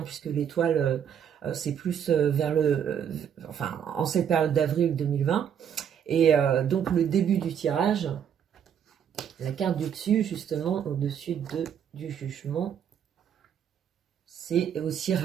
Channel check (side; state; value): left; quieter; 8.5 dB